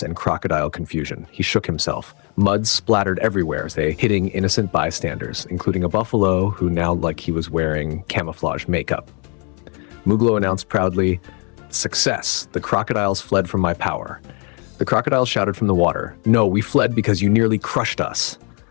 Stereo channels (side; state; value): right; quieter; 35.5 dB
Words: and crocodile confusion. He shook himself. Mud splattered everywhere as they hitting innocent bystanders, including a buffalo who now looked like he was wearing camouflage makeup. Muglo announced proudly, "Success! The crocodiles fled from my power." The crocodiles shouted from the water, "No, we fled because you nearly crushed us."